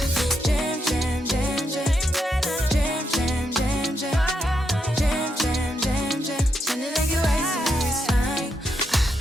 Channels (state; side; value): normal; both; correlation 0.81